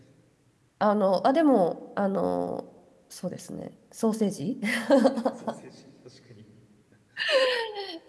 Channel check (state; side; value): identical; both; correlation 1.00